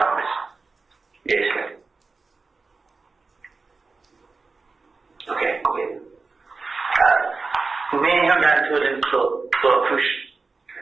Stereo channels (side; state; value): left; quieter; 4.1 dB